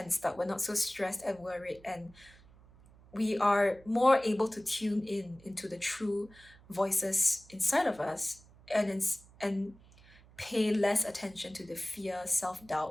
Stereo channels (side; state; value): right; noise; hum, 25 dB below the sound